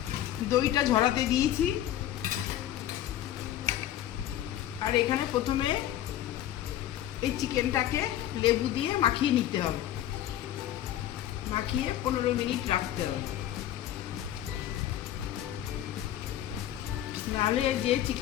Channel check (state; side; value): quieter; right; 12.4 dB